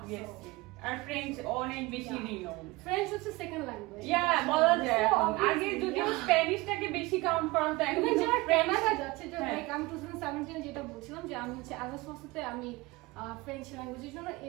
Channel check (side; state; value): left; quieter; 22.2 dB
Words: আর ফ্রেঞ্চ অনেক বেশি রিনোন। ফ্রেঞ্চ হচ্ছে সেকেন্ড ল্যাঙ্গুয়েজ। বলা যায়। আগে যদিও স্প্যানিশটাকে বেশি কাউন্ট করা হতো, এখন যারা কানাডা যাচ্ছে, যে আমি 2017 যেটা বলছিলাম যে আমি হচ্ছে আগাস্টে আমি ফ্রেঞ্চ ল্যাঙ্গুয়েজের জন্য